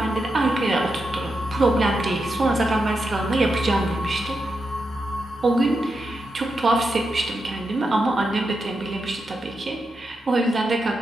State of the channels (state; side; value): normal; both; correlation 0.86